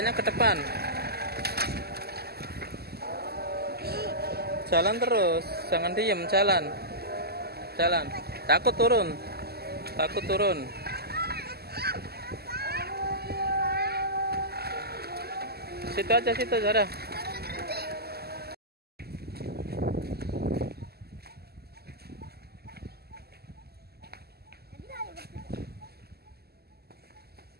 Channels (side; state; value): left; late; 0.46 ms